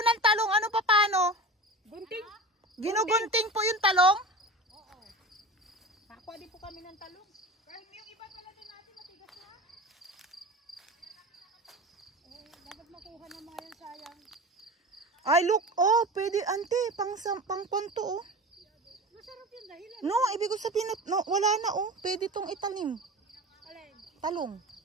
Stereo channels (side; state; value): both; normal; correlation 0.31